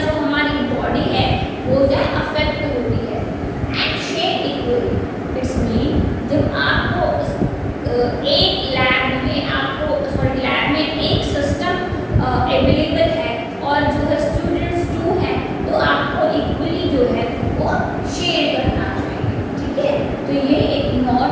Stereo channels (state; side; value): identical; both; correlation 1.00